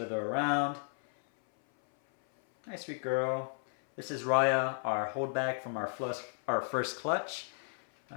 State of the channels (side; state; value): right; silent; 56 dB below the other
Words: around. Hi, sweet girl. This is Raya, our holdback from our first clutch.